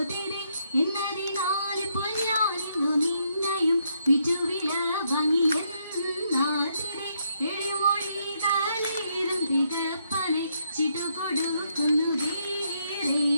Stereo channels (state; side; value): inverted; both; correlation -0.76